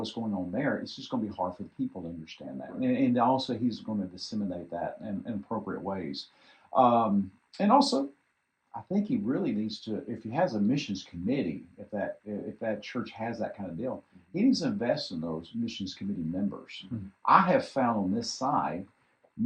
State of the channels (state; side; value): identical; both; correlation 1.00